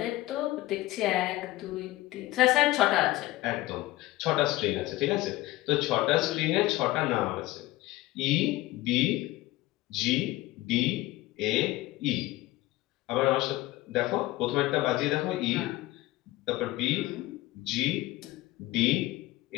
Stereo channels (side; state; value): right; quieter; 17.8 dB